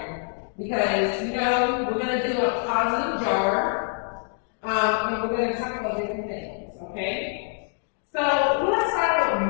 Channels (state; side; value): silent; right; digital silence